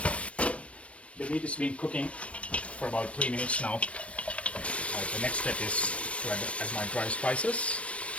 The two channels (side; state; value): right; late; 0.062 ms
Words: The meat has been cooking for about 3 minutes now. The next step is to add my dry spices: